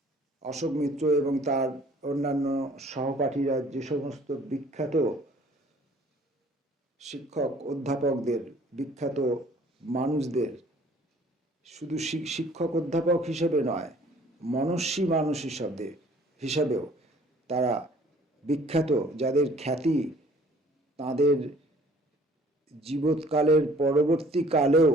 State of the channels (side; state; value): both; normal; correlation 0.55